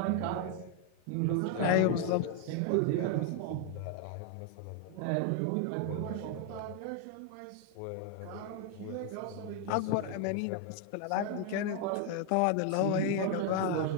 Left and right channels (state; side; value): different; both; correlation 0.01